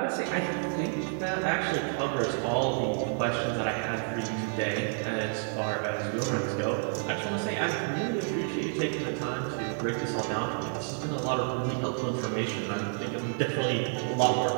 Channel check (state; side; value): silent; left; 58 dB below the other